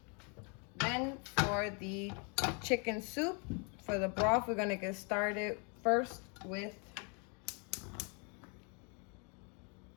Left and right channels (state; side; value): quieter; right; 35.8 dB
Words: Then for the chicken soup, for the broth, we're gonna get started first with